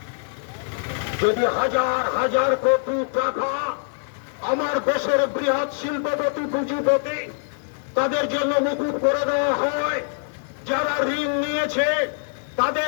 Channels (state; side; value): silent; right; 63 dB below the other